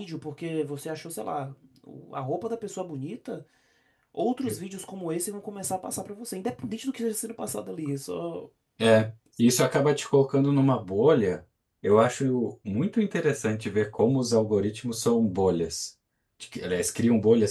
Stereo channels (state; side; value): identical; both; correlation 1.00